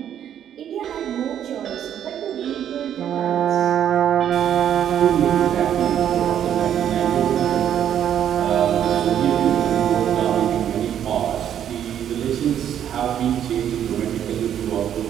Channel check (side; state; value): left; quieter; 9.9 dB